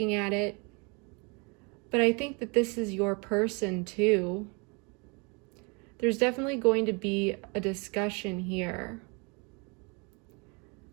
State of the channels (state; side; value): quieter; left; 31.7 dB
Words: at it, but I think that this is your person too. There's definitely going to be a discussion here,